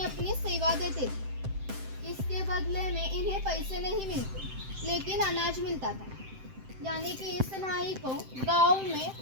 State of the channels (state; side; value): late; left; 7.7 ms